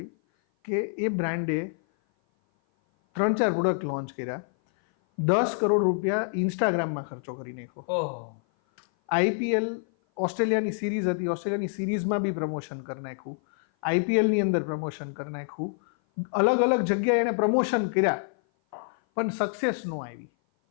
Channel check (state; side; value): silent; right; 56 dB below the other